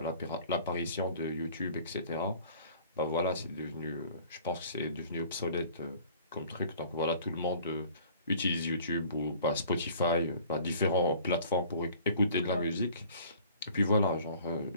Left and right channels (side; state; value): both; inverted; correlation -0.51